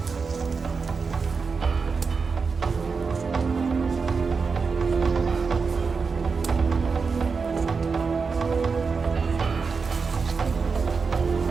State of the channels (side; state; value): left; quieter; 5.0 dB